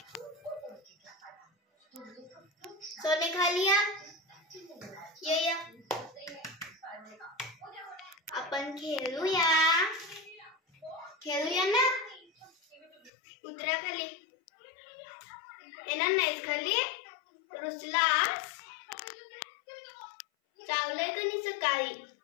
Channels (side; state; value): right; drops out; at 13.1 s